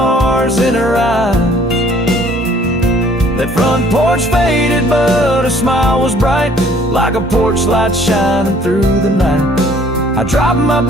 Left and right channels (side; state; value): both; normal; correlation 0.58